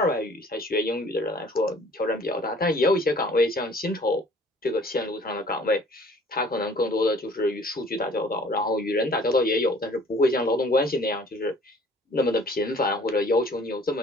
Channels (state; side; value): normal; both; correlation 0.53